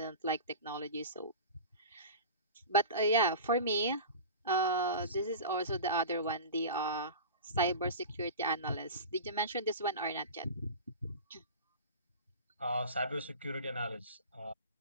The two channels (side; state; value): both; inverted; correlation -0.33